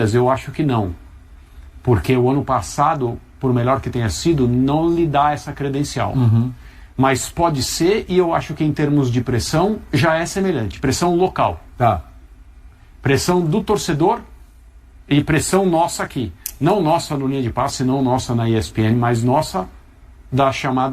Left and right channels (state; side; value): identical; both; correlation 1.00